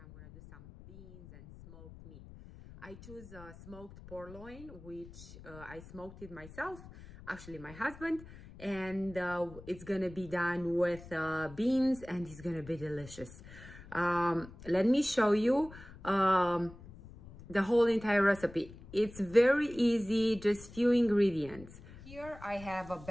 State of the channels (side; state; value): left; noise; rumble, 17 dB below the sound